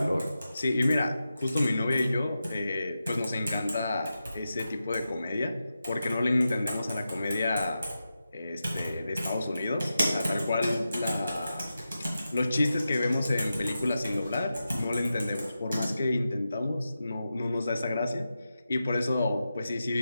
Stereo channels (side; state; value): both; inverted; correlation -0.91